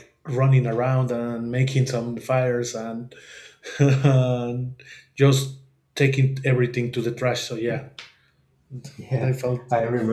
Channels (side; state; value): both; identical; correlation 1.00